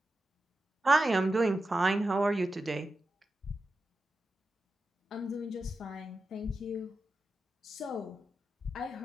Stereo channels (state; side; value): normal; both; correlation 0.90